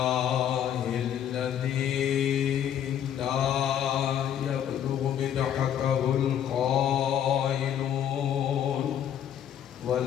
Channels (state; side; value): quieter; right; 9.8 dB